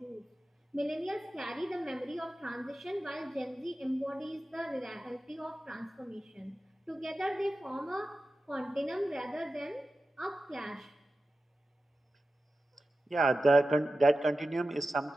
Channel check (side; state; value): both; normal; correlation 0.93